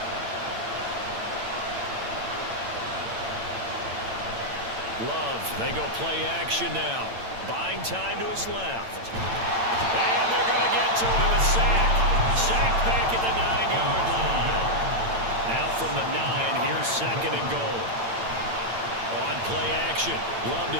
Love, they go play action now. Buying time to his left. And they're going to get to him. A sack. Sacked back at the 9-yard line. Now from the 9, here's second and goal. On play action. Love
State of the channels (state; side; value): late; left; 8.9 ms